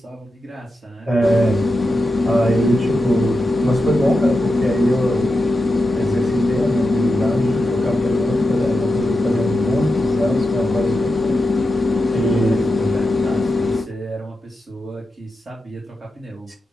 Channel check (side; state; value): both; normal; correlation 0.89